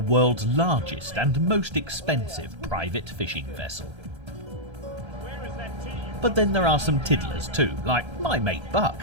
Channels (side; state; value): left; late; 1.3 ms